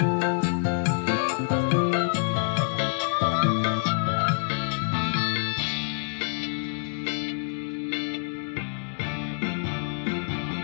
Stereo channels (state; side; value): silent; right; digital silence